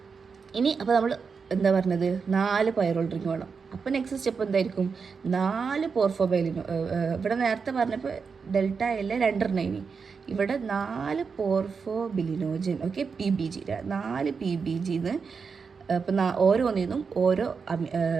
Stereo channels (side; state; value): left; quieter; 5.5 dB